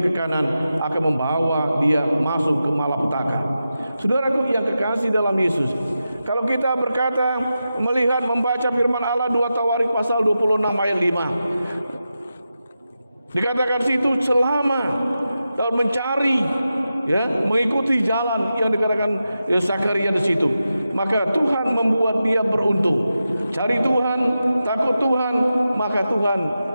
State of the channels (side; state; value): both; inverted; correlation -0.90